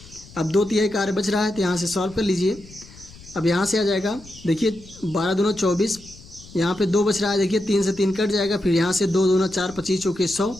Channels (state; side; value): noise; left; rumble, 20 dB below the sound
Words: अब 2/3 कार्य बच रहा है, तो यहाँ से सॉल्व कर लीजिए। अब यहाँ से आ जाएगा, देखिए 12 दूना 24, यहाँ पे 2 बच रहा है, देखिए 3 से 3 कट जाएगा, फिर यहाँ से 2 दूना 4, 25 चौके 100,